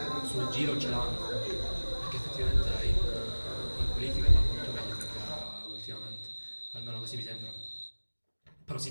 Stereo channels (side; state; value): both; inverted; correlation -1.00